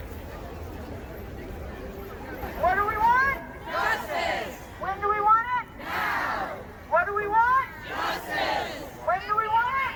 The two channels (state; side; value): identical; both; correlation 1.00